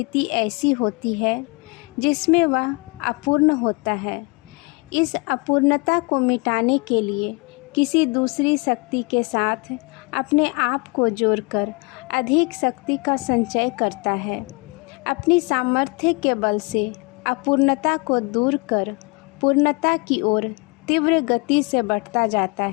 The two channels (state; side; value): quieter; right; 28.8 dB